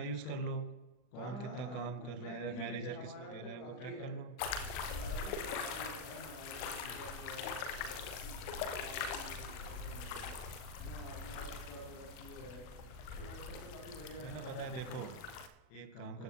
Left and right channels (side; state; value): right; late; 40 ms